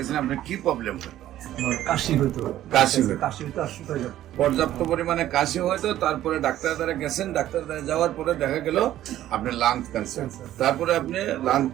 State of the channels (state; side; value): quieter; left; 13.1 dB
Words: আপনার কি প্রবলেম হতো? আমার কাশি হইতো। কাশি হতো। কাশি হইতো আর শুকাই যেত। পর্যাপ্ত পরিমাণে কাশি হয়তো, তারপরে ডাক্তার দ্বারা গেছেন, ডাক্তার দ্বারা যাওয়ার পরে দেখা গেল আপনার লাং ক্যান্সার। তারপরে আপনি লাং